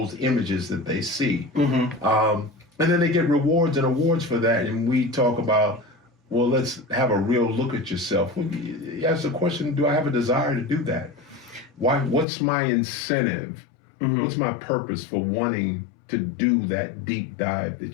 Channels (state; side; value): drops out; right; at 12.2 s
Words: images that they see. And then they get rewards and awards for that, and we talk about, well, let's have a real look at yourself. Well, you ask the question, do I have a desire to do that? Why? What's my incentive? What's my purpose for wanting to do that deep dive